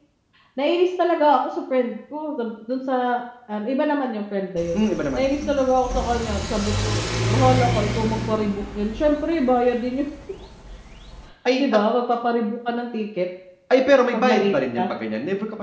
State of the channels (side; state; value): both; identical; correlation 1.00